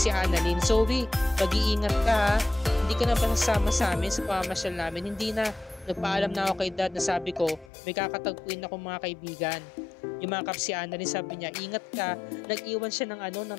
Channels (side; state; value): right; drops out; at 7.7 s